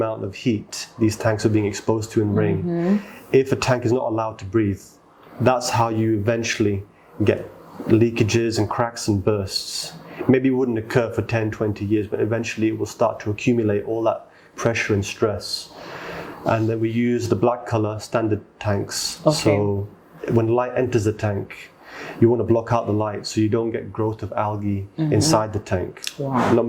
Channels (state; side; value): identical; both; correlation 1.00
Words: of heat these tanks are being exposed to in rain, if a tank is not allowed to breathe, that's how you eventually get leakages and cracks and bursts. Maybe it wouldn't occur for 10, 20 years, but eventually it will start to accumulate all that pressure and stress. And then we use the black color standard tanks. Okay. So when light enters the tank, you want to block out the light so you don't get growth of algae inside the tank. Wow. Not